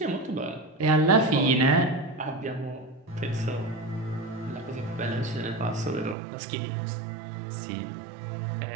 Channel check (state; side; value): drops out; left; at 6.2 s